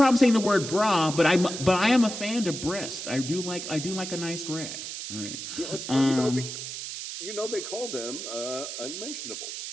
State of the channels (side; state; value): right; noise; hiss, 7 dB below the sound